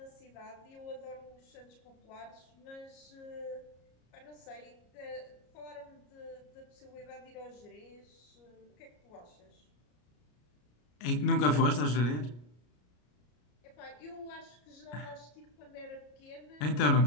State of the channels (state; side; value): late; right; 33 ms